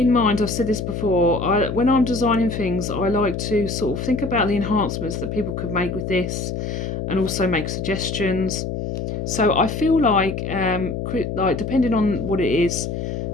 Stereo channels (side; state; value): left; noise; hum, 4 dB below the sound